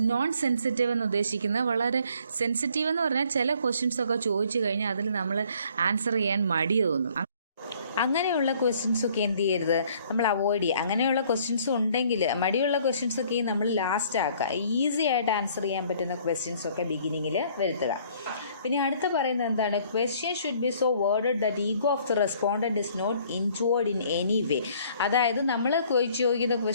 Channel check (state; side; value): inverted; both; correlation -0.59